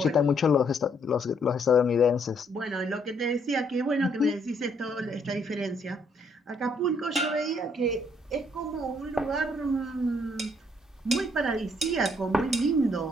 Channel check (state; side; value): normal; both; correlation 0.69